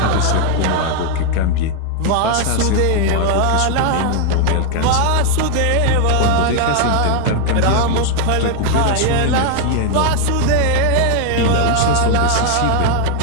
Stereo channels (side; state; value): both; different; correlation 0.00